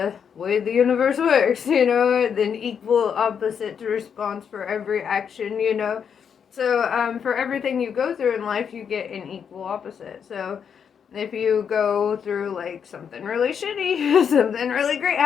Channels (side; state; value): right; quieter; 7.3 dB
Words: way the universe works, you know, an equal opposite response for every action, you know. So for everything you go through in life, you get an equal opposite. So if you go through like something really shitty, something really great